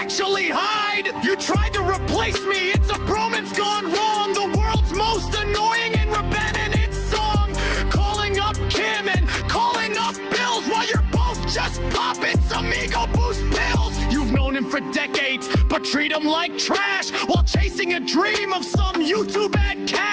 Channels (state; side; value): identical; both; correlation 1.00